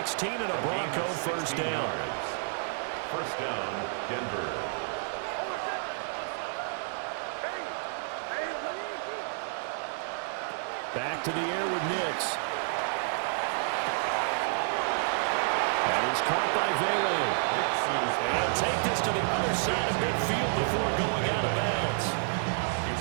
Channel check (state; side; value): silent; left; 58 dB below the other